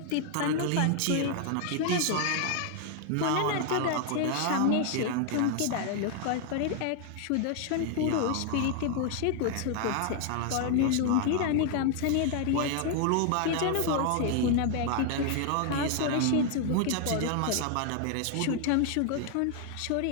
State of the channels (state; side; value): different; both; correlation 0.00